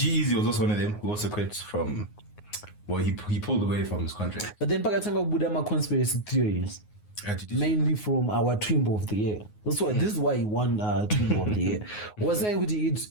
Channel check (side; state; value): right; late; 9.5 ms